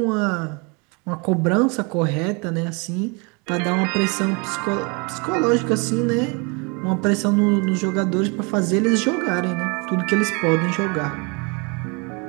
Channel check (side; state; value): left; quieter; 31.2 dB